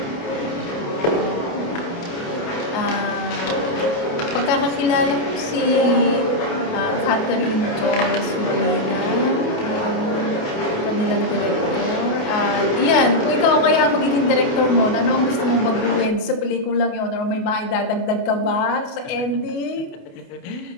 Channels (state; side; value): late; right; 28 ms